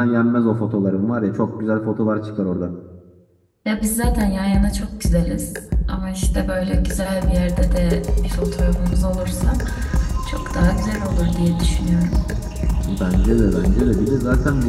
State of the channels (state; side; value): identical; both; correlation 1.00